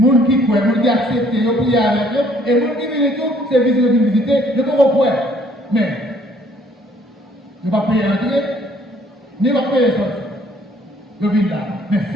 gens qui croient, les gens qui acceptent, ils prient avec eux, et les gens qui viennent tout, c'est visiter, ils ne peuvent pas. Mais, ils ne vont pas payer l'entrée, ni pas payer sortir. Ils viennent là. Mais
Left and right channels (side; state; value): both; normal; correlation 0.61